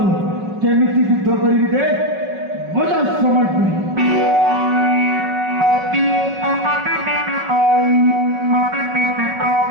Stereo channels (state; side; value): late; left; 5.3 ms